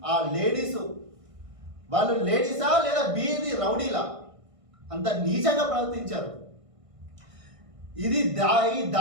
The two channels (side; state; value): left; late; 1.6 ms